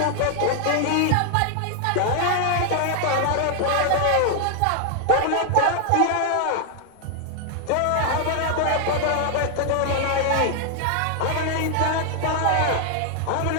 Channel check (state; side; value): different; both; correlation 0.00